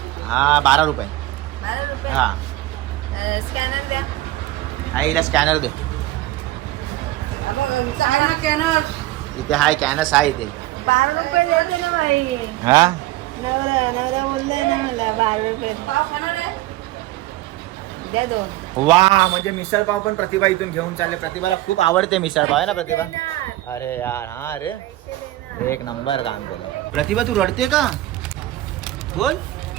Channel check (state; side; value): quieter; left; 16.6 dB